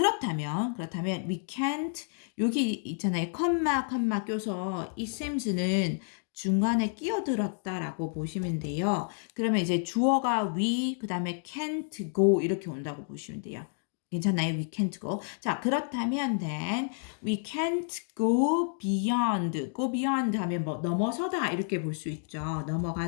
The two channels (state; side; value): silent; right; 58 dB below the other